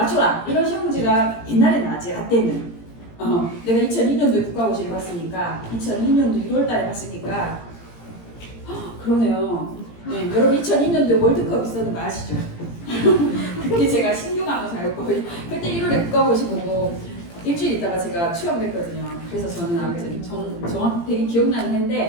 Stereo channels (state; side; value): late; right; 17 ms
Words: 이런 시험 문제가 옛날에 나왔지. 라떼는 내가 2002년도에 국가고시를 봤으니까 2002년도 6월달에 봤으니까 그러네요. 네, 여러분 2002년도에 월드컵 있었는 거 아시죠? 그때 제가 신규간호사였고 그때 1월에 국가고시 보고 일주일 있다가 제가 취업을 했거든요. 그래서 저는 아무튼 정확히 기억나는